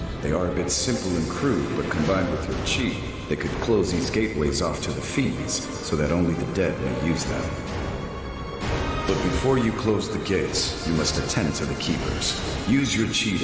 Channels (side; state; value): both; identical; correlation 1.00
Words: They are a bit simple and crude, but combined with your chi, they could close these gateways off to the fiends, so that only the dead may use them. But before you close the gates, you must attend to the keepers. Use your chi